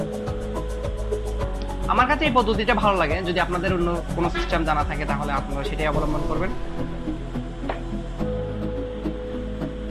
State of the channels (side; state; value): both; identical; correlation 1.00